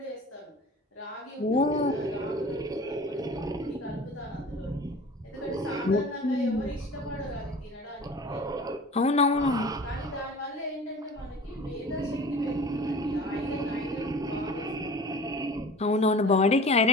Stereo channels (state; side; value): normal; both; correlation 0.41